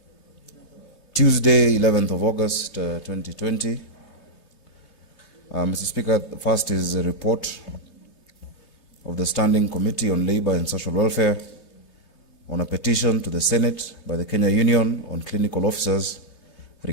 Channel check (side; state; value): right; late; 3.2 ms